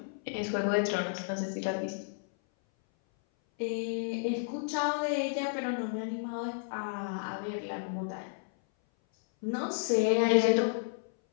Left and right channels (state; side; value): silent; right; 57 dB below the other